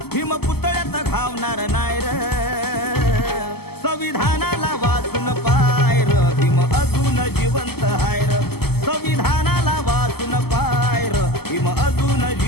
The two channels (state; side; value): late; right; 0.96 ms